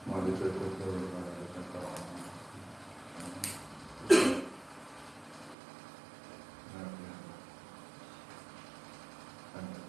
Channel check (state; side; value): drops out; left; at 5.6 s